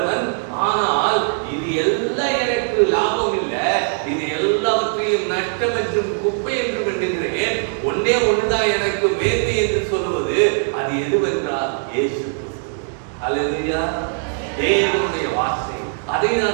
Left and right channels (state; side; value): silent; left; 66 dB below the other